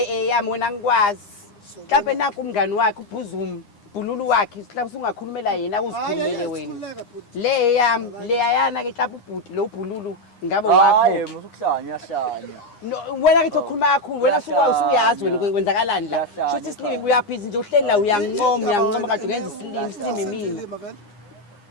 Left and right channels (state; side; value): late; right; 9.8 ms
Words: wena ngikwazi mhlawumbe nakho umngani wakhe uBhuzuma Bhululu wakhe mhlawumbe ungakhulumela yena uzikhulumele wena le eyami leyayana ke mhlawumbe ubhuti lo Bhululu ngabe wakho hayi musukuhlanya yahlanya wena ke ukukhuluma kakhulu wena usuyazi wena kwenzakalani la shothi isilimi uyaphiza nje uhleli la uyangincoma kade uyenza isilimi mina